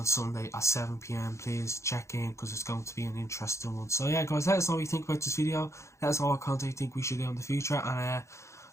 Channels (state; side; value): late; right; 0.14 ms